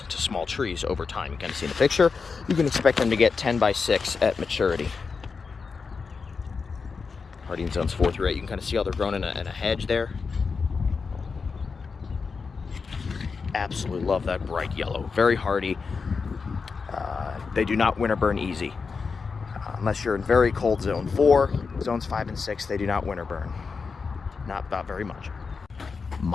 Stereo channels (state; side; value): quieter; right; 5.0 dB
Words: to small trees over time. You can see in the picture. You can expect them to get 10 by 6 at maturity. Hardy in zones 4 through 8. You can kind of see how they're grown in a hedge there. Absolutely love that bright yellow. Very hardy. They do not winter burn easy. Unless you're in very cold zone 4, zones 5 and 6, they do not winter burn. Not very much.